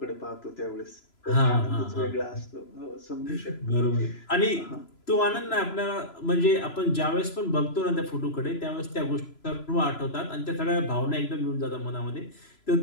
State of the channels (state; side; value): late; right; 3.0 ms